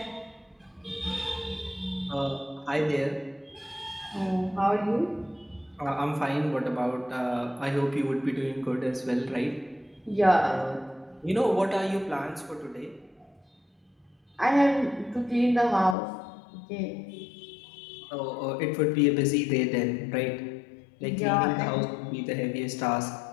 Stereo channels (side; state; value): right; drops out; at 16.0 s